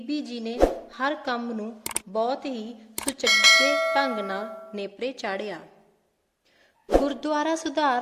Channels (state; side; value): identical; both; correlation 1.00